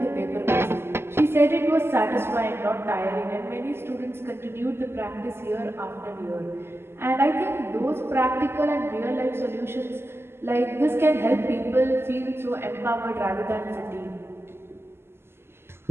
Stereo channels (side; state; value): left; late; 0.12 ms